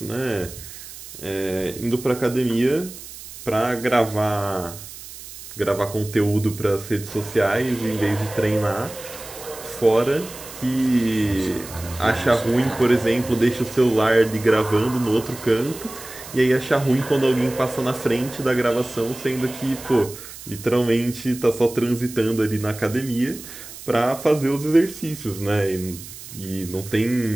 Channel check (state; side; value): noise; right; hiss, 14 dB below the sound